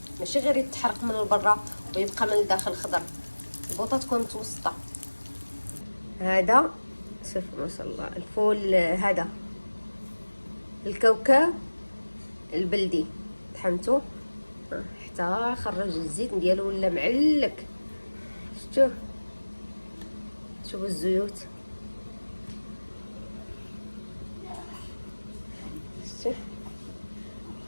ماشي غير يتحرق من البرا ويبقى من الداخل خضر. البوطه تكون متوسطه. هذا شوفوا ما شاء الله الفول، هذا الكاوكاو البلدي طحنته حتى خرج الزيت ديالو ولا معلك. شوفوا الزيوت،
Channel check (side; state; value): both; inverted; correlation -1.00